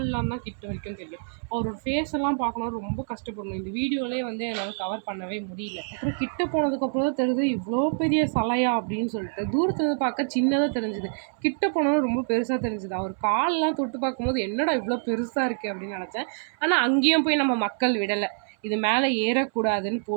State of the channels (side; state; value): left; silent; 60 dB below the other